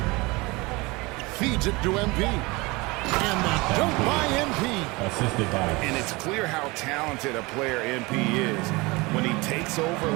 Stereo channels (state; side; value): quieter; left; 24.2 dB